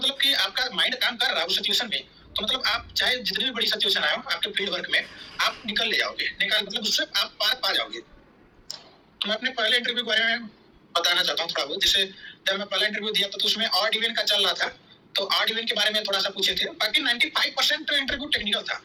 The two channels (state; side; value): identical; both; correlation 1.00